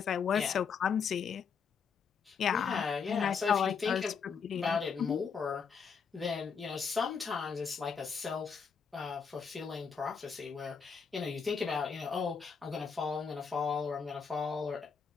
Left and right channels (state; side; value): quieter; right; 6.1 dB